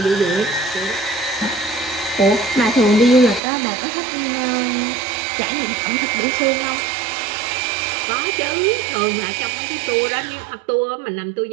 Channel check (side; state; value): left; drops out; at 3.4 s